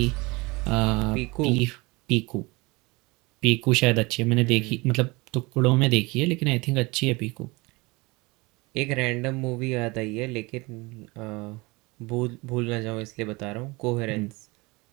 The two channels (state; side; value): quieter; left; 24.6 dB